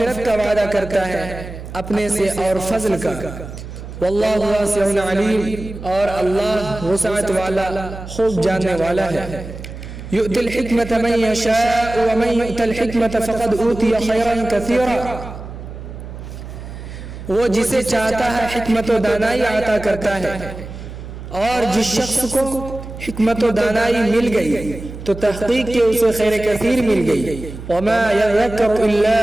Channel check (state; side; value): noise; right; hum, 12 dB below the sound